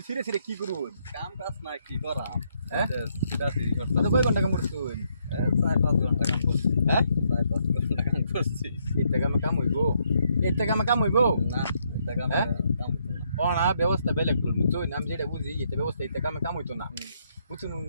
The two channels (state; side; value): inverted; both; correlation -0.74